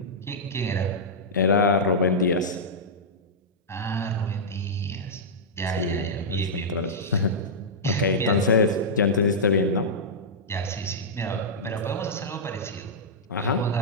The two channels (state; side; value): normal; both; correlation -0.11